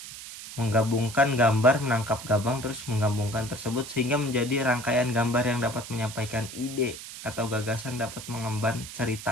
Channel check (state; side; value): noise; right; hiss, 12 dB below the sound